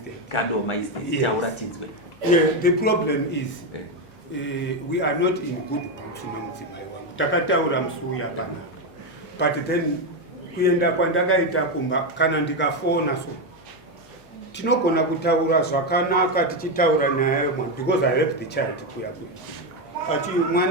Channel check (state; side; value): normal; both; correlation 0.08